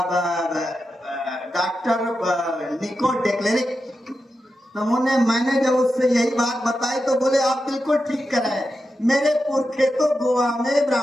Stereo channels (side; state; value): both; normal; correlation 0.89